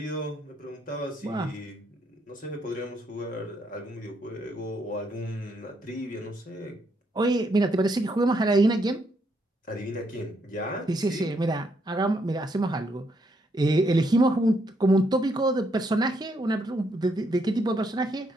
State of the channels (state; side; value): normal; both; correlation 0.75